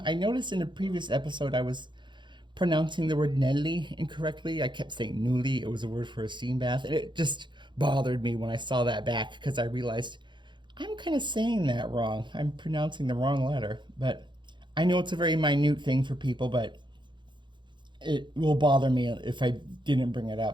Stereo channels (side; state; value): left; late; 0.23 ms